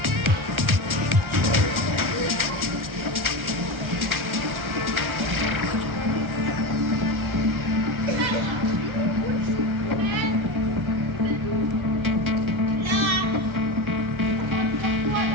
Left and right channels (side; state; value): left; late; 1.3 ms